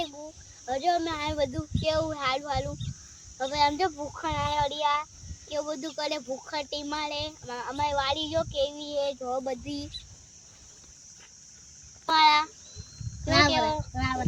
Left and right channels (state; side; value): identical; both; correlation 1.00